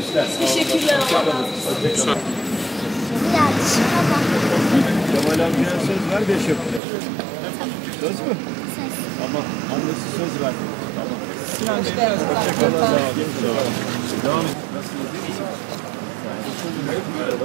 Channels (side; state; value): left; drops out; at 6.8 s